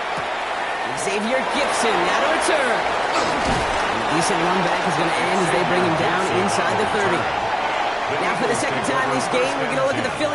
Xavier Gibson now to return. And a decent run back is going to end as they bring him down inside the 30. Now for the second time this game, we're going to look at the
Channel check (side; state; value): both; identical; correlation 1.00